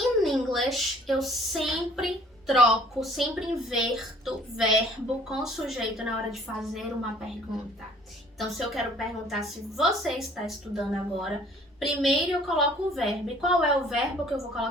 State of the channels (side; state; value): both; normal; correlation 0.55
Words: English eu sempre sempre inverto verbo com sujeito na hora de fazer uma pergunta. Então, se eu quero perguntar se você está estudando agora, Primeiro eu coloco o verbo. E qual é o verbo que eu vou